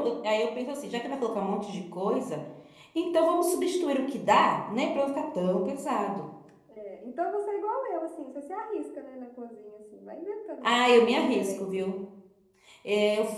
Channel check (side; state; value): both; identical; correlation 1.00